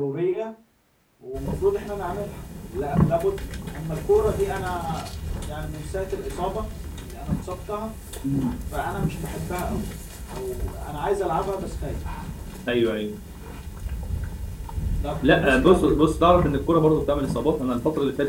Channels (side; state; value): both; identical; correlation 1.00